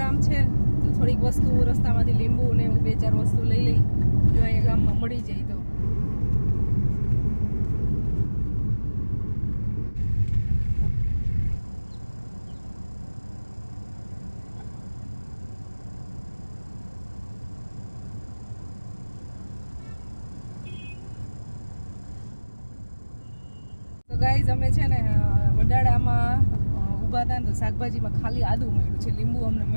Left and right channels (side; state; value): both; inverted; correlation -1.00